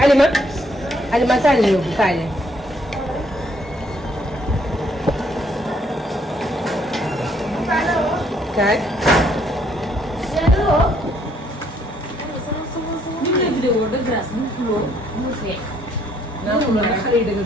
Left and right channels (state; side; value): normal; both; correlation 0.67